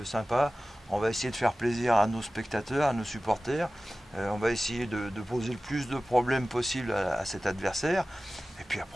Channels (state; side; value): normal; both; correlation 0.96